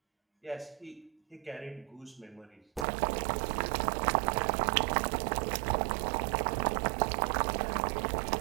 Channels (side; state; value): left; drops out; at 2.9 s